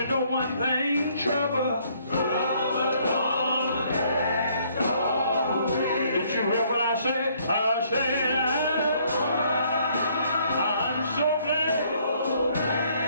know one thing, trouble. Did you hear what I said? I said, I'm so glad.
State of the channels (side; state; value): both; inverted; correlation -0.65